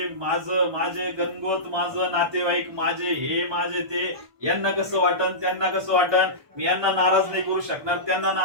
माझं माझे गणगोत, माझं नातेवाईक, माझे हे माझे ते, यांना कसं वाटन, त्यांना कसं वाटन, मी यांना नाराज नाही करू शकणार, त्यांना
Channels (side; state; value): left; late; 1.2 ms